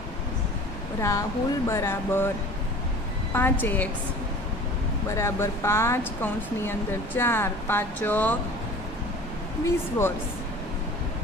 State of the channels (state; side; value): normal; both; correlation 0.42